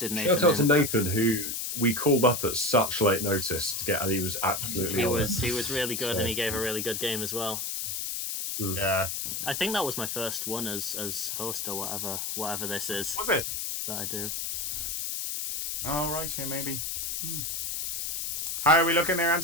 Nathan. Shout out to Nathan, who we called up at such late notice to get, and he was absolutely. He was really good, and he gave a really good game as well. Yeah. I think that was my first one as host or whatever this is. Was it? That I do. Oh, right, yeah, maybe. How are we looking there,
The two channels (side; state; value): left; noise; hiss, 3 dB below the sound